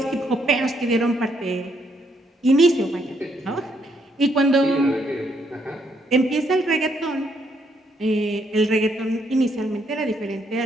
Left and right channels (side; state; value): both; normal; correlation 0.73